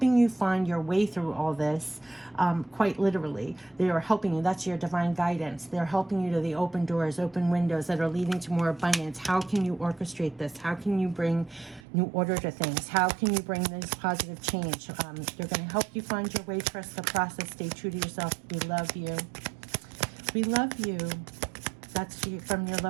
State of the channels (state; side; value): drops out; left; at 11.8 s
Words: you find your way through all this, quite literally. They are helping you. That's your divine guidance. They're helping you to the open doors, open windows that are leading to more abundance. How can you orchestrate this? How can you bring new order to things? How can you bring this positive change? They're going to help you find your way. Trust the process. Stay true to yourself. We love you. We love you. That's from your